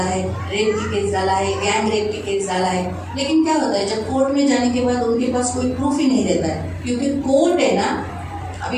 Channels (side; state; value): both; identical; correlation 1.00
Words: है, रेप की केस डाला है, गैंग रेप की केस डाला है. लेकिन क्या होता है, जब कोर्ट में जाने के बाद उनके पास कोई प्रूफ ही नहीं रहता है, क्योंकि कोर्ट है ना.